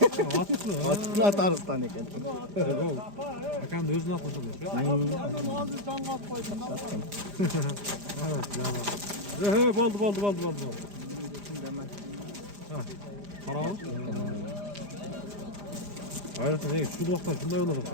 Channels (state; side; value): late; left; 5.0 ms